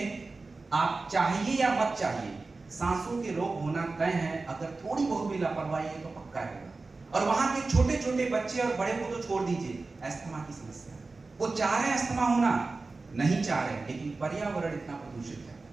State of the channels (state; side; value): quieter; left; 3.7 dB